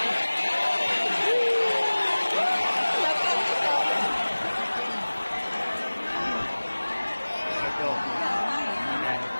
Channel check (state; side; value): inverted; both; correlation -1.00